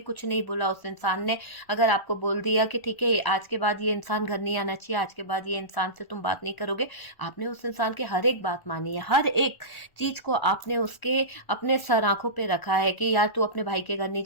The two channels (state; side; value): late; right; 1.3 ms